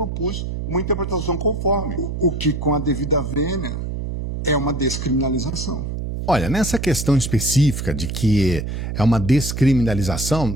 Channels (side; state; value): right; noise; hum, 4 dB below the sound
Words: uma interpretação conforme. O que, com a devida vênia, é uma descriminalização. Olha, nessa questão específica de que é uma